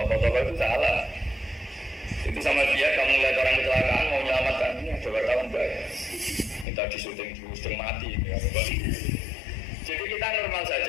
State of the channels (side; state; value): right; drops out; at 6.7 s